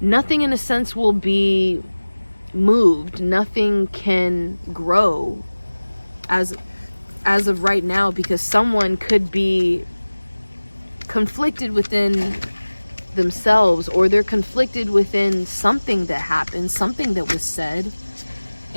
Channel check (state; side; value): inverted; both; correlation -1.00